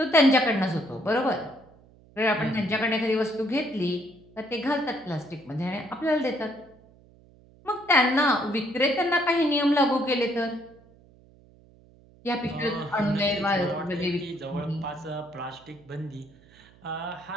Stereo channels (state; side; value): noise; right; hum, 27 dB below the sound